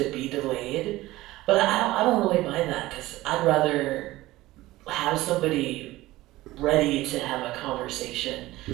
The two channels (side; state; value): left; quieter; 17.7 dB